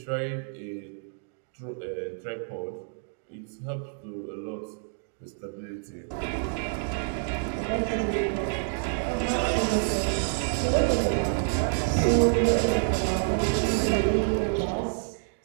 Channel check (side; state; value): left; silent; digital silence